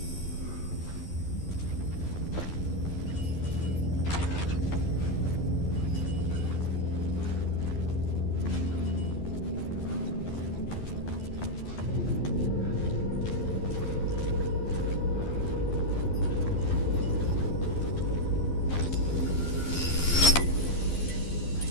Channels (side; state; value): right; late; 12 ms